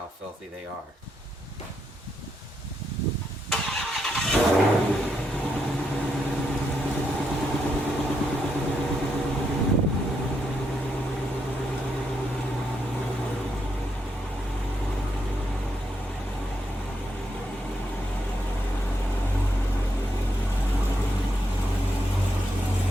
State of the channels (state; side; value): normal; both; correlation 0.80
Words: filthy they are.